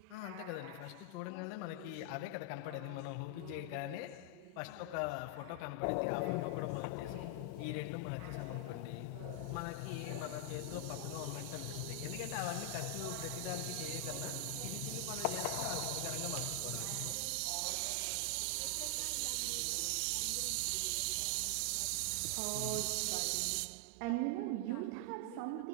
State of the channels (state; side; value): different; both; correlation 0.00